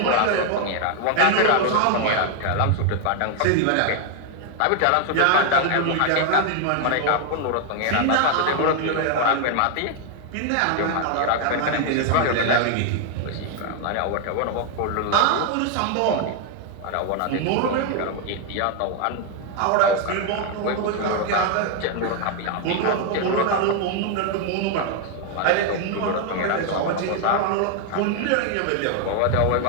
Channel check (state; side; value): different; both; correlation 0.00